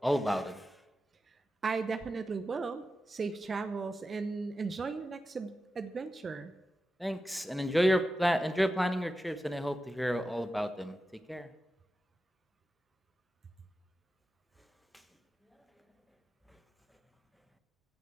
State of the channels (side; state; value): both; normal; correlation 0.92